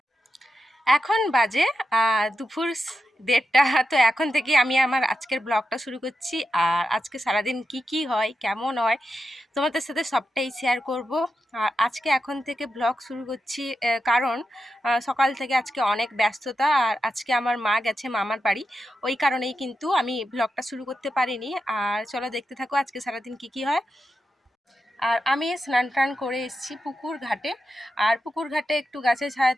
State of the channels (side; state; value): both; normal; correlation 0.88